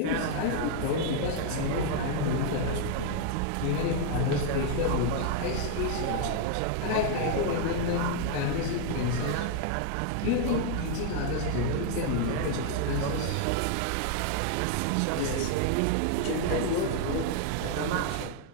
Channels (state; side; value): different; both; correlation 0.00